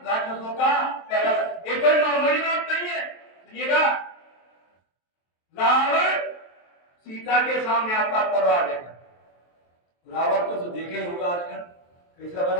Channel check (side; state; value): right; late; 23 ms